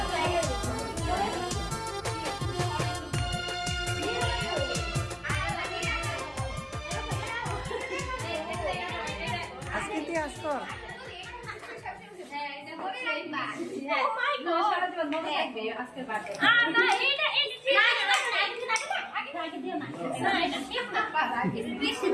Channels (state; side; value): identical; both; correlation 1.00